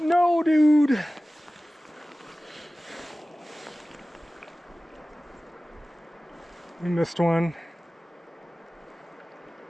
dude. We missed one.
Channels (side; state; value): both; normal; correlation 0.97